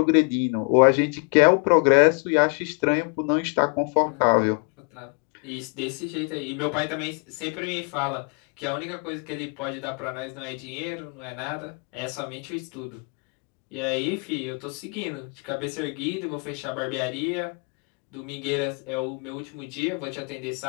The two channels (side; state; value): right; quieter; 37.6 dB